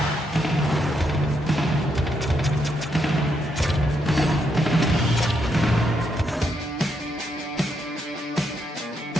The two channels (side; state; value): both; normal; correlation 0.78